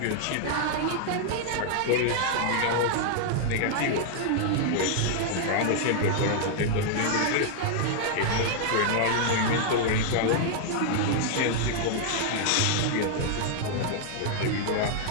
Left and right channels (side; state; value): both; different; correlation 0.00